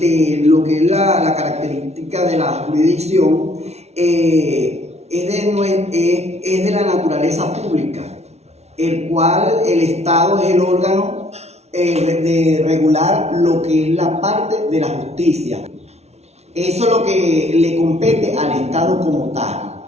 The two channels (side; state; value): left; late; 0.31 ms